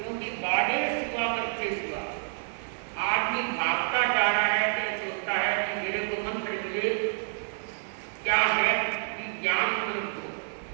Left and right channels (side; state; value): left; silent; digital silence